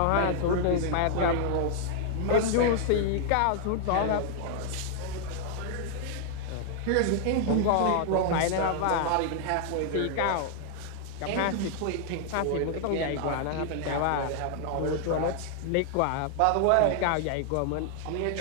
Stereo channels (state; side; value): different; both; correlation 0.00